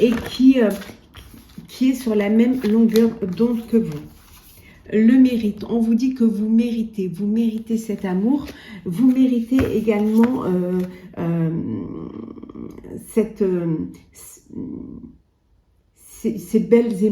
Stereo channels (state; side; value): identical; both; correlation 1.00